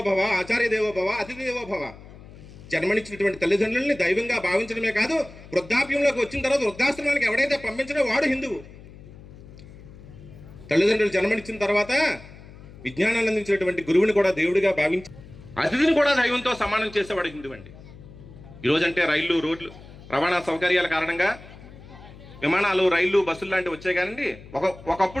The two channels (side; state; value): left; noise; hum, 18 dB below the sound